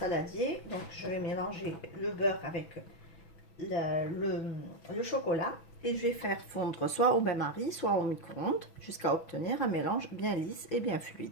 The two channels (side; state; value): right; late; 6.1 ms